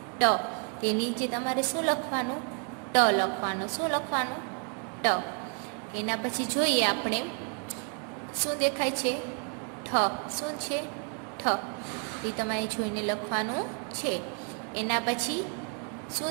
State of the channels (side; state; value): left; quieter; 38.3 dB